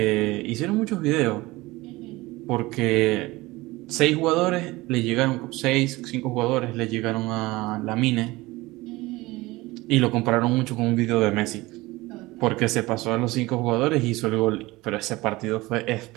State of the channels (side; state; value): left; quieter; 20.4 dB